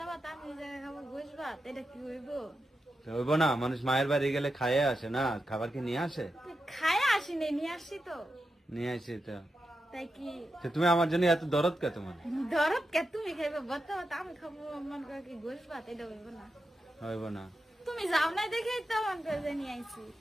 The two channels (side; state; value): both; normal; correlation 0.88